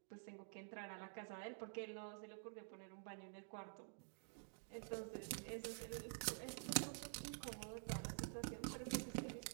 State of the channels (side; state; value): left; silent; digital silence